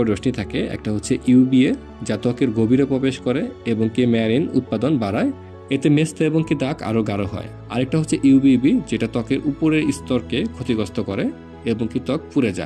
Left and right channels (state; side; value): identical; both; correlation 1.00